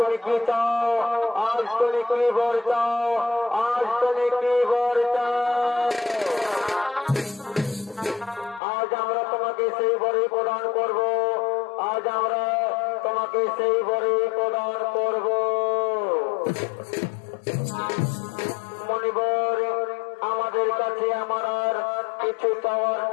কি চাও, আজ তুমি কি বর চাও, আজ তুমি কি বর চাও। আজ আমরা তোমাকে সেই বরে প্রদান করব, আজ আমরা তোমাকে সেই বরে প্রদান করব। মণিবর আমাদের কাছে আমার আর কিছু চাওয়ার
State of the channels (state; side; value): drops out; right; at 8.6 s